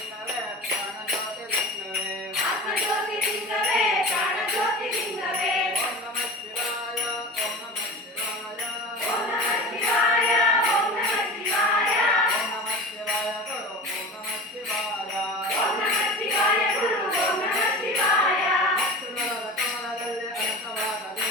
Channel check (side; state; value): both; normal; correlation 0.34